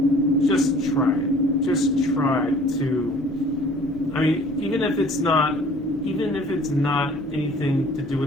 just try it. Just try to, even if it's not anything to do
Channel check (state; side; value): normal; both; correlation 0.52